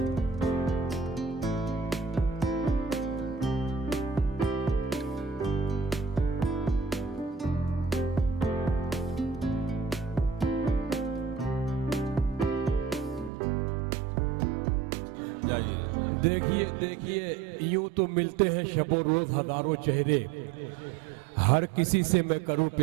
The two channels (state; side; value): drops out; left; at 13.3 s